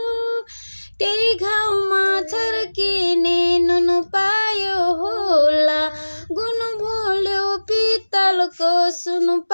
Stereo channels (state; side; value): inverted; both; correlation -1.00